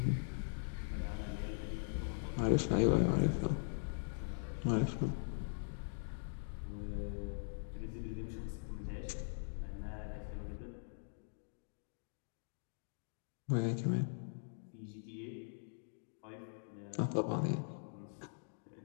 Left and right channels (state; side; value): silent; right; digital silence